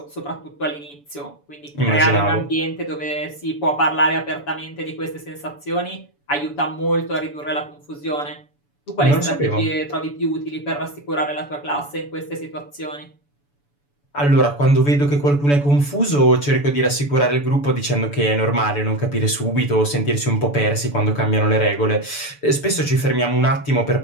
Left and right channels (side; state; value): right; late; 7.0 ms